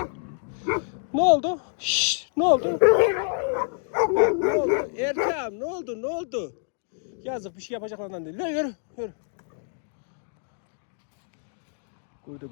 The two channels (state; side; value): silent; right; 60 dB below the other